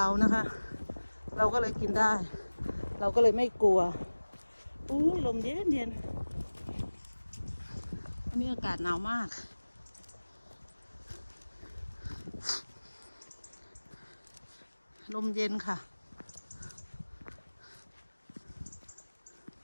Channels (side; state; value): both; inverted; correlation -1.00